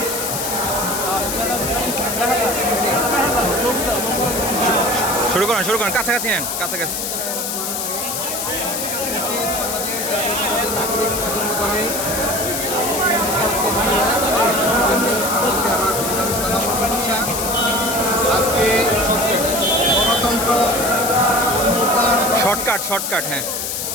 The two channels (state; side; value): noise; left; hiss, 3 dB below the sound